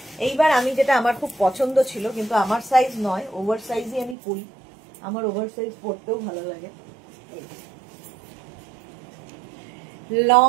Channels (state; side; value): drops out; left; at 4.2 s